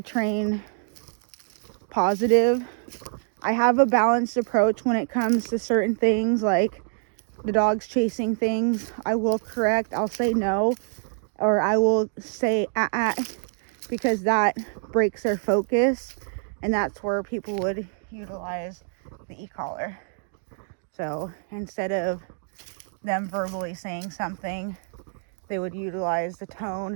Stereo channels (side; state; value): left; silent; digital silence